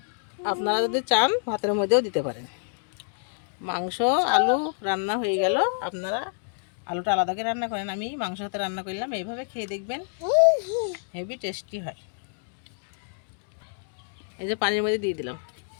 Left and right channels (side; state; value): right; silent; digital silence